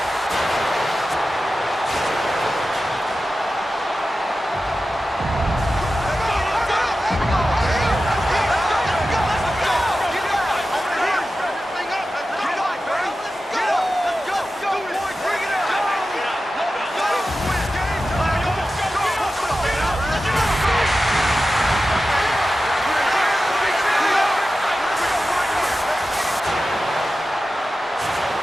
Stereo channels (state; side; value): normal; both; correlation 0.93